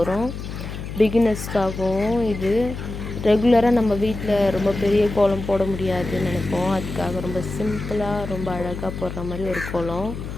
பிகினர்ஸ்க்காகவும் இது ரெகுலரா நம்ம வீட்ல ரொம்ப பெரிய கோலம் போட முடியாதுன்னு நினைப்போம். அதுக்காக ரொம்ப சிம்பிளா ரொம்ப அழகா போடுற மாதிரி ஒரு கோலம்.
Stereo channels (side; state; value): left; noise; hum, 8 dB below the sound